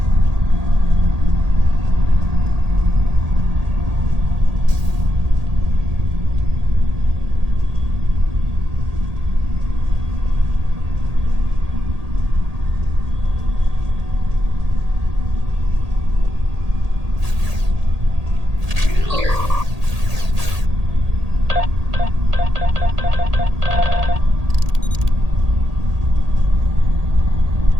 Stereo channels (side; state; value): left; late; 1.8 ms